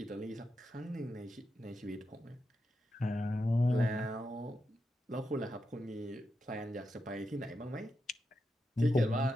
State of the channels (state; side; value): normal; both; correlation 0.86